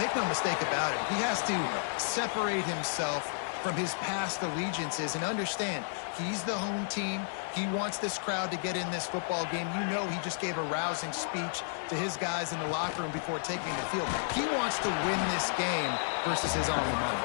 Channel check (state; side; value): silent; right; 56 dB below the other